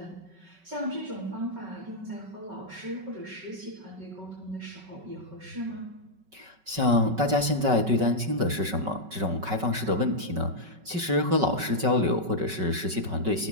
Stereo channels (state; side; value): late; left; 5.3 ms